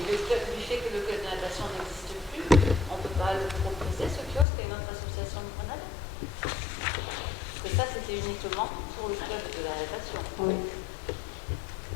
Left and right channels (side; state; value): right; drops out; at 4.5 s